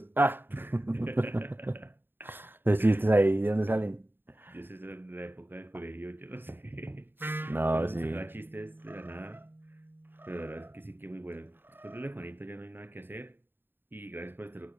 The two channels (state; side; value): late; left; 0.098 ms